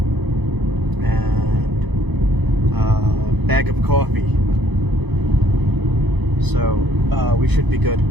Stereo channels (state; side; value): late; left; 0.99 ms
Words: and a bag of coffee. So we should be good